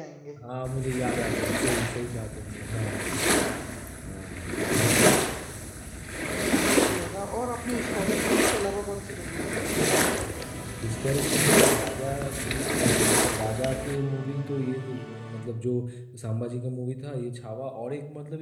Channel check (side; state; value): both; identical; correlation 1.00